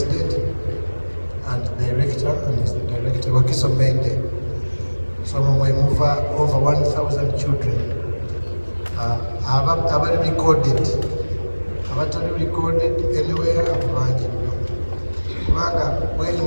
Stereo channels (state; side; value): inverted; both; correlation -1.00